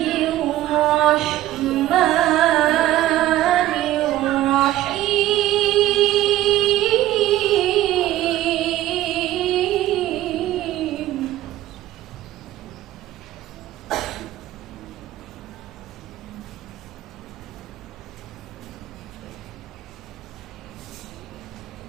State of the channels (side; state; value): left; quieter; 14.5 dB